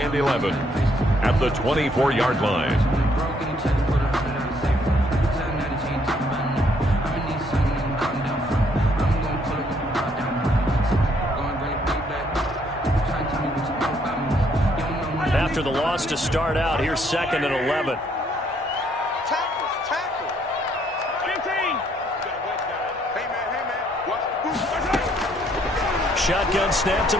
and 11 at the 24-yard line. After the loss to start out, here's 2nd and 11. Shotgun snap to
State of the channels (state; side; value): normal; both; correlation 0.68